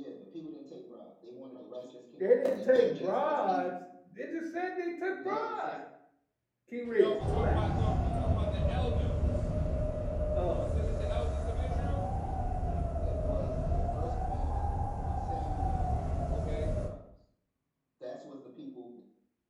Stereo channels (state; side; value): identical; both; correlation 1.00